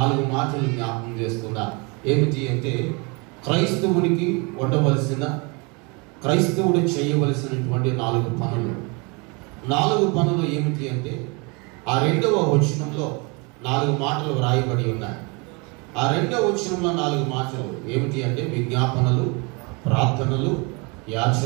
మాటలు జ్ఞాపకం చేస్తున్నా. ఏమిటి అంటే క్రైస్తవునికి ఉండవలసిన, క్రైస్తవుడు చేయవలసినటువంటి 4 పనులు. 4 పనులు ఏమిటి అంటే ఆ 2వ వచనంలో 4 మాటలు వ్రాయబడి ఉన్నాయి. ఆ 2వ వచనంలో 4 మాటలు ఏమిటి అంటే విజ్ఞాపనలు, ప్రార్థనలు,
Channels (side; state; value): left; quieter; 30.0 dB